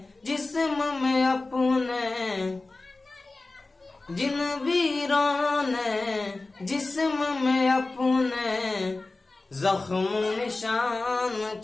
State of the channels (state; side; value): quieter; right; 3.3 dB